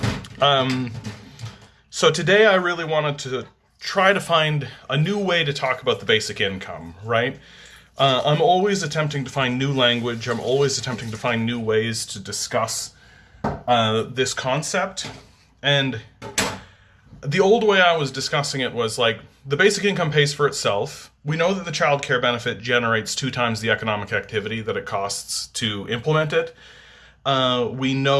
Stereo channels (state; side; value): identical; both; correlation 1.00